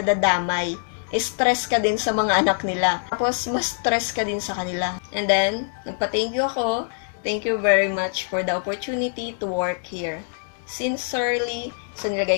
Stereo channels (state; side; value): silent; right; digital silence